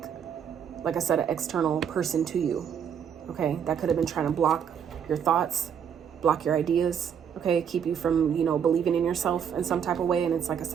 I said, an external person to you. Okay, that could have been trying to block your thoughts, block your ideas, okay, keep you from, you know, believing in yourself in some type of way. And it's like I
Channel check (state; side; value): quieter; left; 7.9 dB